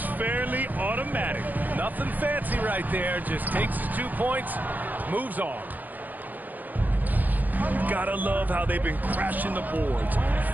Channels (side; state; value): left; late; 0.083 ms